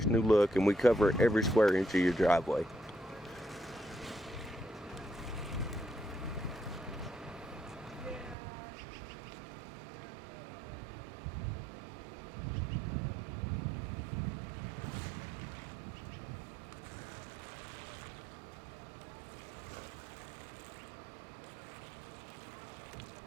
new look, and we cover every square inch of your driveway.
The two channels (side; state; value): left; drops out; at 8.3 s